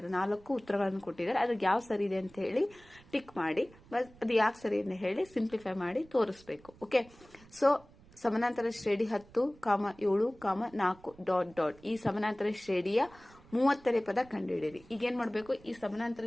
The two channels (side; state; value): right; noise; rumble, 24 dB below the sound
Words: 4 ಉತ್ತರಗಳನ್ನು ಕೊಟ್ಟಿದ್ದಾರೆ. ಅದ್ರಿಗೆ ಯಾವ ಸರಿ ಇದೆ ಅಂತ ಹೇಳಿ ಟಿಕ್ ಮಾಡಿ, ಅದು ಯಾಕೆ ಸರಿ ಅಂತ ಹೇಳಿ ಸಿಂಪ್ಲಿಫೈ ಮಾಡಿ ತೋರಿಸ್ಬೇಕು. ಓಕೆ, ಸೊ ಸಮಾನಾಂತರ ಶ್ರೇಣಿ 10, 7, 4 ... ಈ ಸಮಾನಾಂತರ ಶ್ರೇಣಿಯ 30ನೇ ಪದ ಕಂಡುಹಿಡಿಯಿರಿ. ಈಗ ಏನ್ ಮಾಡಬೇಕು, ಈ